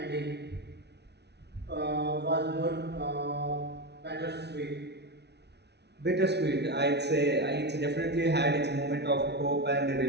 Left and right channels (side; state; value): left; late; 0.49 ms